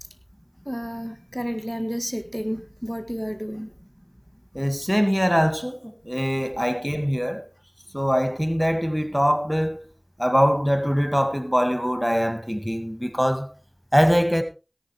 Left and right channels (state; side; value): identical; both; correlation 1.00